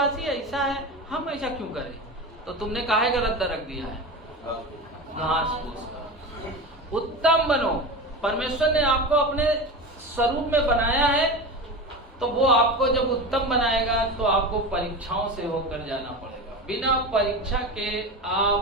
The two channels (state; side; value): normal; both; correlation 0.26